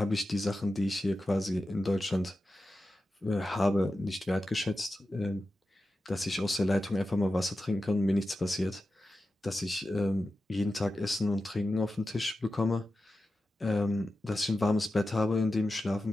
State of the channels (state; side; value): normal; both; correlation 0.92